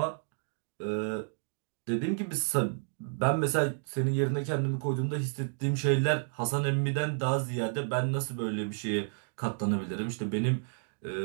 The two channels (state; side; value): silent; left; digital silence